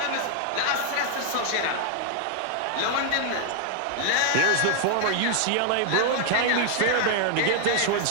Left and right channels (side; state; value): both; different; correlation 0.00